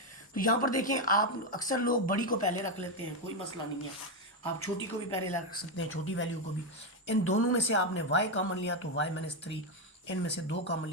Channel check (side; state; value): both; normal; correlation 0.06